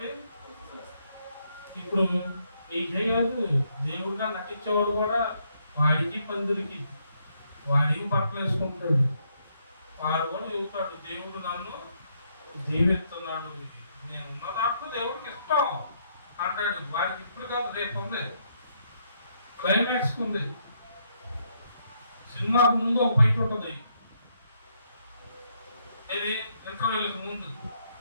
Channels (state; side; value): inverted; both; correlation -0.74